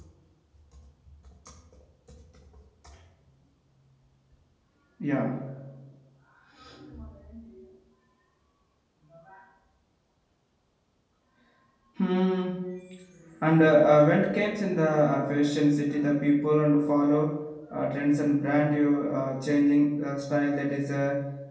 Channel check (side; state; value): both; identical; correlation 1.00